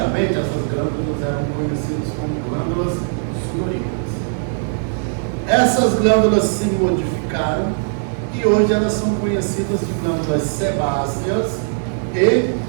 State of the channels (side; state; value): left; silent; 66 dB below the other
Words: essas glândulas eram conhecidas como glândulas sudoríparas. Essas glândulas se modificaram e hoje elas são conhecidas de glândulas sebáceas e